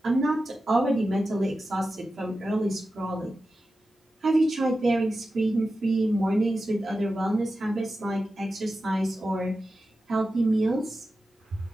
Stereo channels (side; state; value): both; normal; correlation 0.92